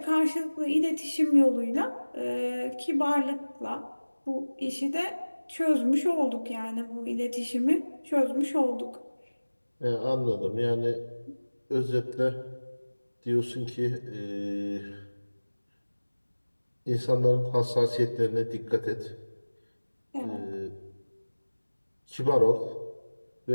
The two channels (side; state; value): both; inverted; correlation -1.00